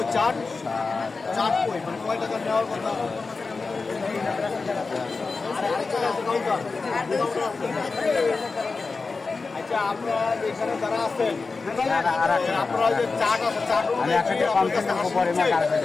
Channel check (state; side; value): quieter; right; 4.2 dB